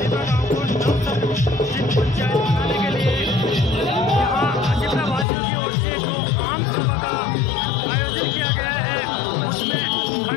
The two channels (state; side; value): drops out; right; at 5.2 s